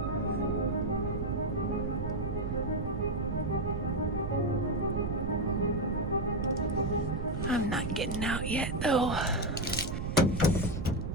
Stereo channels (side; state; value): right; noise; rumble, 3 dB below the sound